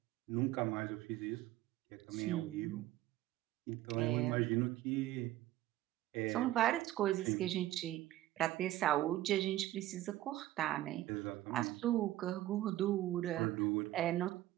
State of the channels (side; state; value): left; quieter; 15.0 dB